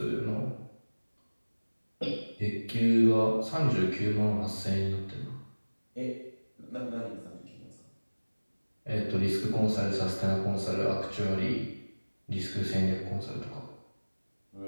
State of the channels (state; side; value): inverted; both; correlation -1.00